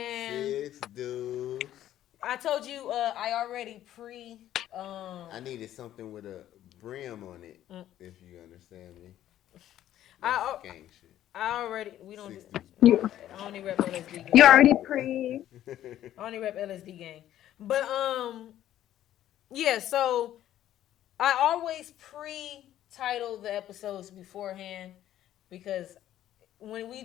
6 dudes. I told you I already I needed something with a brim on it, if you understand me. I Gang shit. we don't. Six Do, I only rep LSD gang. You already pre. I only rep LSD gang, but yeah. So I always pre-title the episodes beforehand because when we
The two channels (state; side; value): quieter; right; 12.3 dB